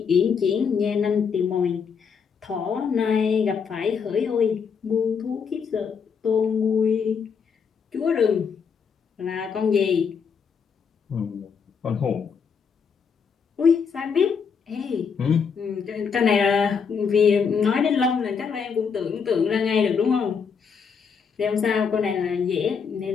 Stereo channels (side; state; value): right; quieter; 6.2 dB